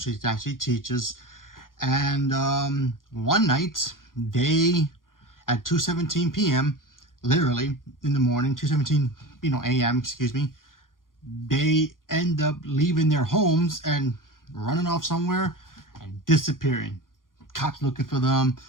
that she teaches. And one night, at 2:17 p.m., literally in the morning, 2:17 a.m., they end up leaving their homes and running off somewhere and disappearing. Cops looking for them.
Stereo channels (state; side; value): late; right; 0.90 ms